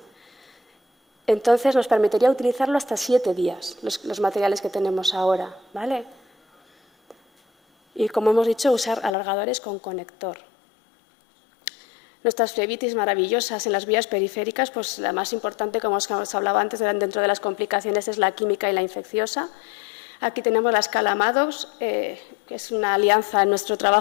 Entonces nos permitiría utilizarlo hasta 7 días, los materiales que tenemos ahora, ¿vale? Y como hemos dicho, usar alargadores con conector. Nuestras flebitis maravillosas en las vías periféricas, pues la más importante, como os hablaba antes, dentro de las complicaciones es la química y la infecciosa. Aquí tenemos la escala Maddox, que es una alianza en nuestro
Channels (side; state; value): right; drops out; at 9.2 s